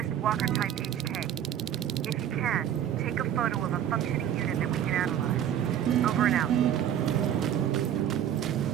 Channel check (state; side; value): quieter; left; 10.2 dB